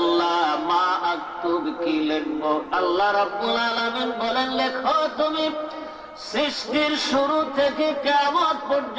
মা আক্তুব, কি লিখবো? আল্লাহ রাব্বুল আলামিন বলেন লেখো তুমি সৃষ্টির শুরু থেকে কিয়ামত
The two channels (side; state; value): both; identical; correlation 1.00